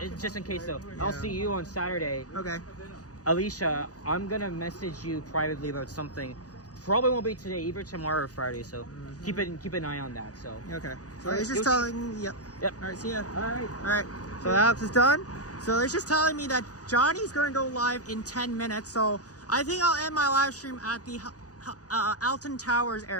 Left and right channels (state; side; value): late; right; 0.67 ms